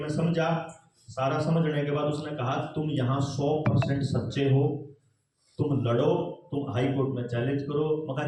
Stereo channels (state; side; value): identical; both; correlation 1.00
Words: समझा। सारा समझने के बाद उसने कहा तुम यहाँ 100% सच्चे हो, तुम लड़ो, तुम हाई कोर्ट में चैलेंज करो।